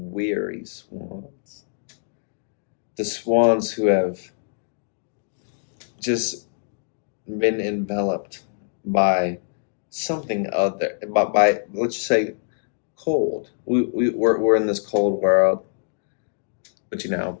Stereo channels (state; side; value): silent; right; digital silence